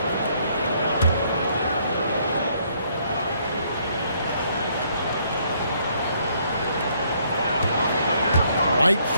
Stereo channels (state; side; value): inverted; both; correlation -0.68